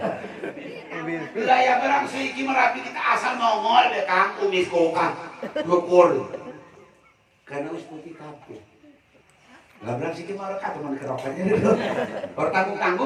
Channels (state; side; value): identical; both; correlation 1.00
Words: wilayah barang siki Merapi kita asal nongol deh Kang kumis kokang ngukur karena us putih kabeh. Lah berang siki marek teman kerokannya dulu. Ora